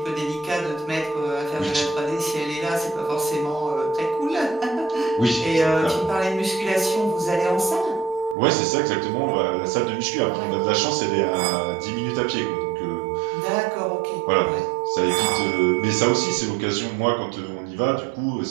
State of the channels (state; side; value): drops out; left; at 8.3 s